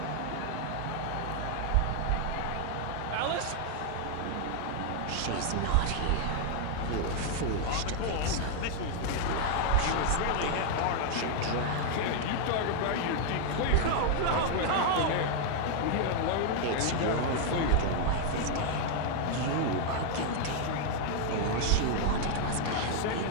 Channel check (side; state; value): both; different; correlation 0.00